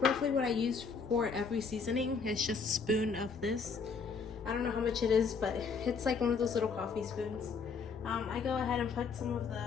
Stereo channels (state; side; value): quieter; right; 5.3 dB